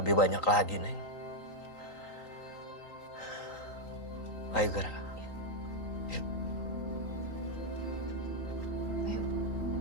banyak lagi, Neng. Ayo, Gara. Yuk. Ayo.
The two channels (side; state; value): right; late; 3.8 ms